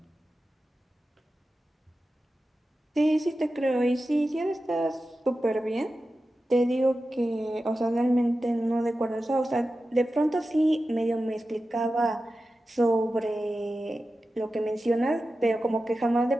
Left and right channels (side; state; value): both; normal; correlation 0.93